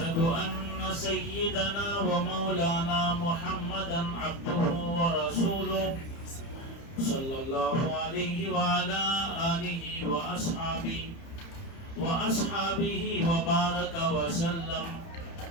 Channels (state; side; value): late; right; 30 ms